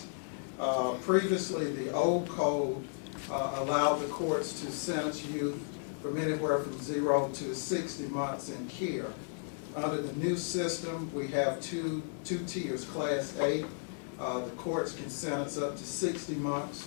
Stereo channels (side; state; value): right; silent; digital silence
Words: Previously, the old code allowed the courts to sentence youth from anywhere from 0 to 60 months in care. Under the new system, we have two tiers. Class A, the courts can sentence up to 60